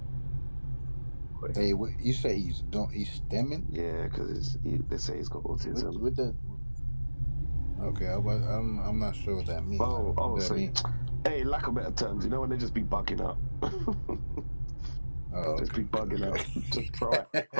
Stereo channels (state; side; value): inverted; both; correlation -1.00